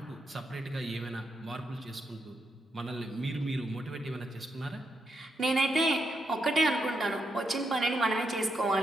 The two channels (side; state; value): both; normal; correlation 0.81